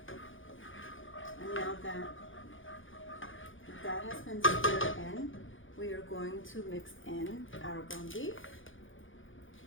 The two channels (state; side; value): late; right; 0.57 ms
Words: And now that has been stirred in, we are going to mix in our ground beef.